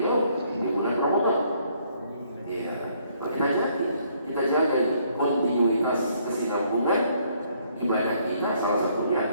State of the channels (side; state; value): both; inverted; correlation -0.66